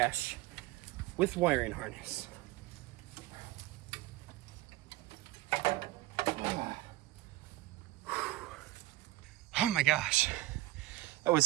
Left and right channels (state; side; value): quieter; left; 17.7 dB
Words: with wiring harness. Oh my gosh, that was